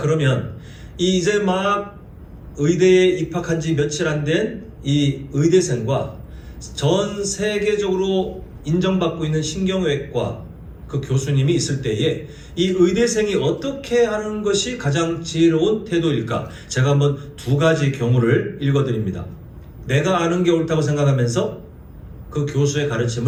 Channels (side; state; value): both; identical; correlation 1.00